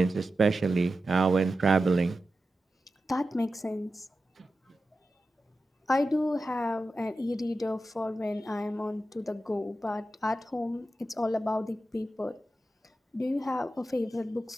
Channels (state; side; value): normal; both; correlation 0.92